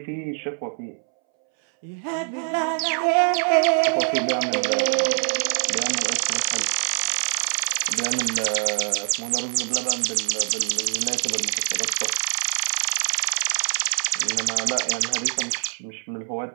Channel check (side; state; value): left; silent; 63 dB below the other